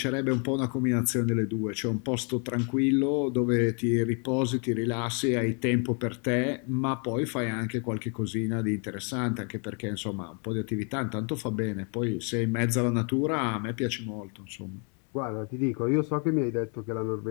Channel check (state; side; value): quieter; right; 38.8 dB